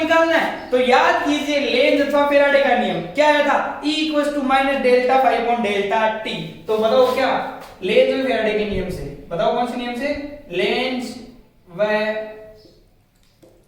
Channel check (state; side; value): identical; both; correlation 1.00